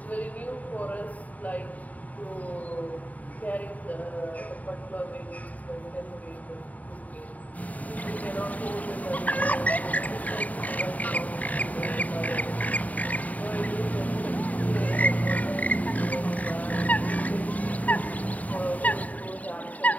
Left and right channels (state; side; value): late; right; 0.072 ms